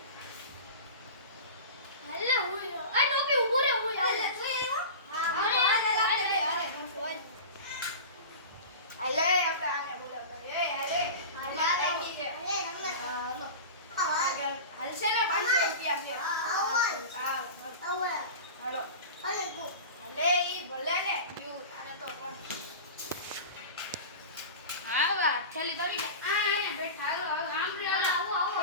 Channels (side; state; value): both; inverted; correlation -0.31